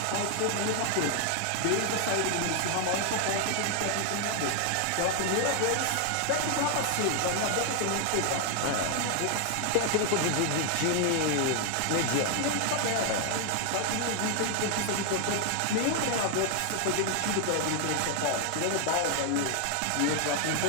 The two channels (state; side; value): different; both; correlation 0.00